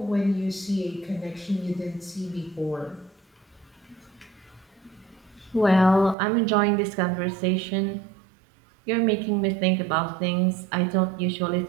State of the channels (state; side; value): drops out; left; at 6.2 s